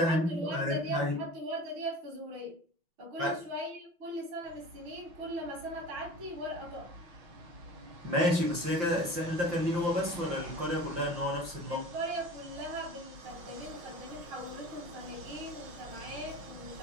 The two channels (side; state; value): left; late; 5.8 ms